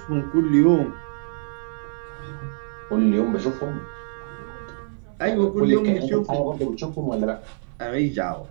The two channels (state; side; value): silent; left; 60 dB below the other